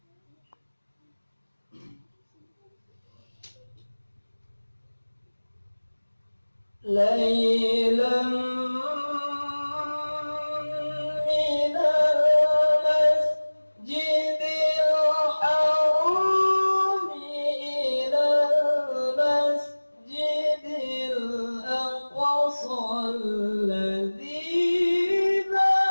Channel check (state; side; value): inverted; both; correlation -1.00